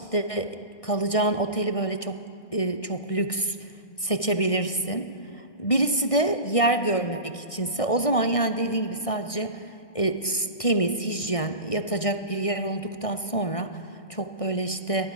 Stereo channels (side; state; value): right; late; 1.6 ms